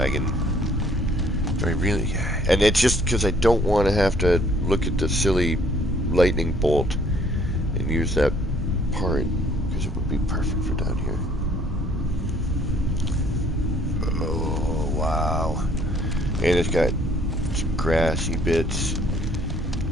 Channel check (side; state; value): both; normal; correlation 0.61